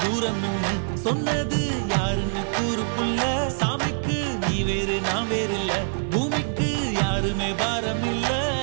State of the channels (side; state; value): left; silent; 62 dB below the other